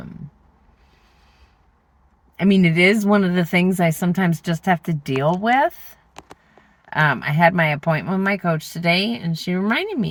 mean, it is one of the things I sometimes just have to deal with. I had my appointment with my coach today, and she reminded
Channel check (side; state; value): both; identical; correlation 1.00